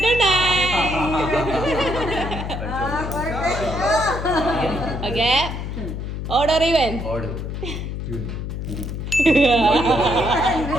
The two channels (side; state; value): left; noise; hum, 5 dB below the sound